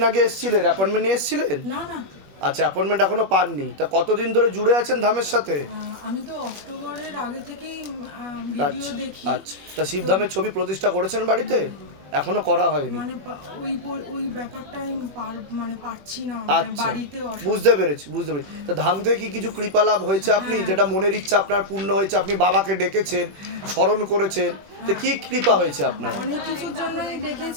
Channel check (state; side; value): late; left; 21 ms